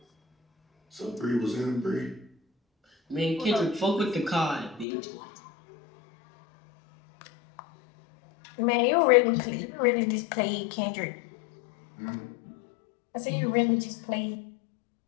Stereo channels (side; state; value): right; drops out; at 4.9 s